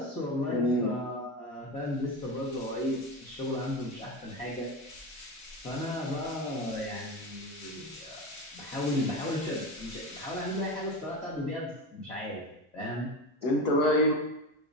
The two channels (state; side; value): normal; both; correlation 0.22